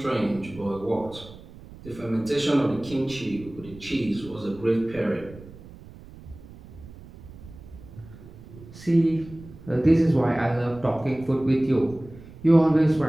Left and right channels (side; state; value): right; noise; rumble, 18 dB below the sound